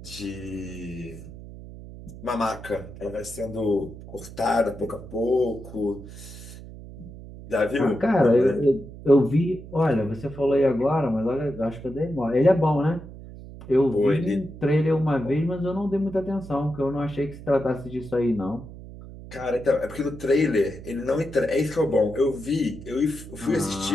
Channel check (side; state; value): right; noise; hum, 15 dB below the sound